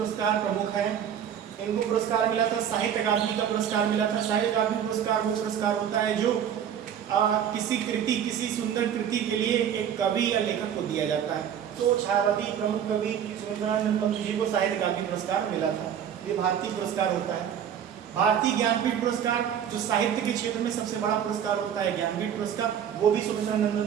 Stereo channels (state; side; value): quieter; left; 9.0 dB